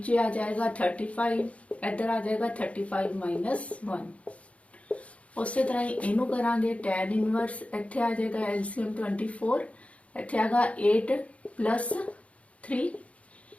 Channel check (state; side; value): late; right; 0.064 ms